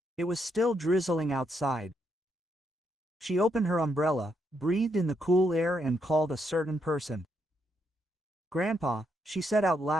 It was still drizzling outside. She opened her umbrella, breathed in the cool air and called a certain person. "Grandpa," she said out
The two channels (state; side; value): normal; both; correlation 0.78